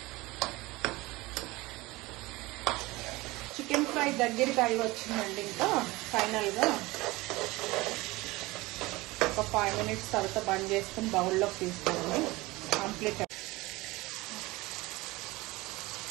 చికెన్ ఫ్రై దగ్గరికి అయి వచ్చిందండి. ఇంకా ఫైనల్గా ఒక 5 minutes తర్వాత బంద్ చేసుకుని బౌల్లోకి తీసుకోండి. కంప్లీట్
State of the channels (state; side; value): quieter; left; 21.3 dB